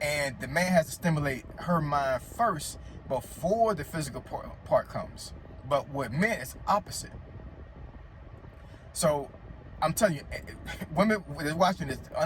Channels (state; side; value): identical; both; correlation 1.00